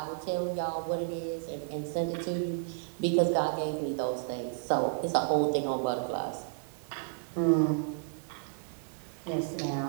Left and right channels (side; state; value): left; silent; 56 dB below the other